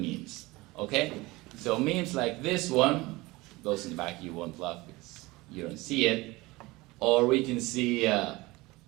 okay? So memes like this one, those in the back you won't laugh because you don't see it, or we can see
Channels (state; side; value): quieter; left; 21.4 dB